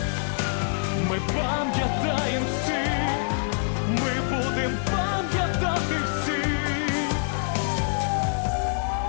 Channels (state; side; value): silent; right; digital silence